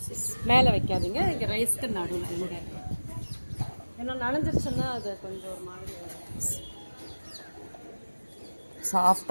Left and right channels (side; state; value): both; inverted; correlation -1.00